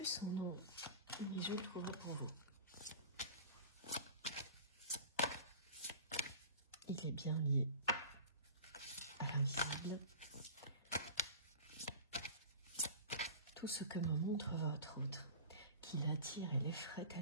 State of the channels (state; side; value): inverted; both; correlation -0.38